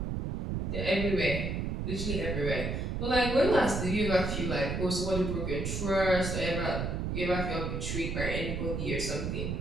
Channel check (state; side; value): noise; right; rumble, 2 dB below the sound